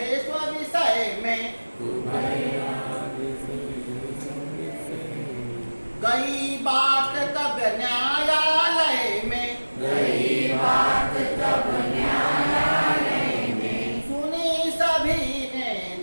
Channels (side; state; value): both; inverted; correlation -1.00